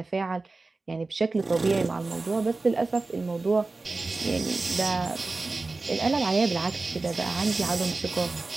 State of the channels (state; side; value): quieter; left; 3.5 dB